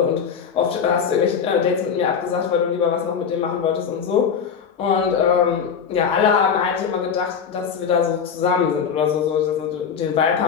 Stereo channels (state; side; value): quieter; right; 6.8 dB